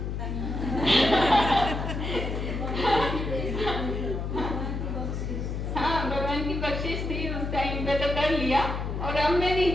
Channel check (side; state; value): left; noise; hum, 3 dB below the sound